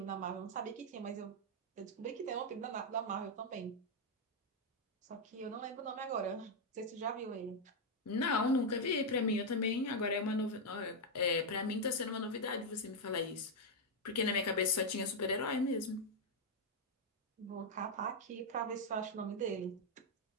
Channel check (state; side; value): normal; both; correlation -0.01